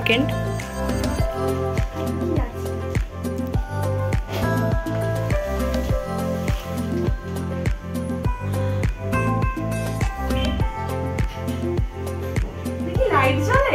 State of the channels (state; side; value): identical; both; correlation 1.00